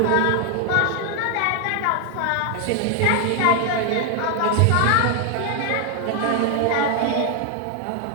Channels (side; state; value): both; different; correlation 0.00